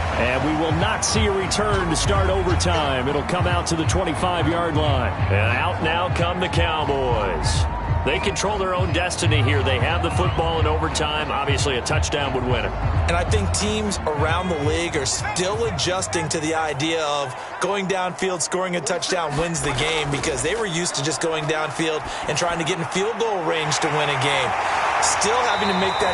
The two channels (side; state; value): both; identical; correlation 1.00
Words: And we will not see a return to start overtime. It'll come out to the 25-yard line. And out now come the Cowboys. They control their own destiny here. They have the football in overtime. Obviously, a touchdown would win it. And I think teams around the league are still adjusting to the idea of going downfield, scoring a touchdown wins the game, because they were used to just going downfield and trying to get in field goal range to win a game. Still having to make